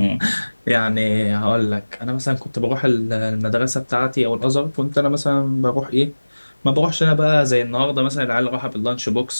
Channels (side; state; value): both; inverted; correlation -1.00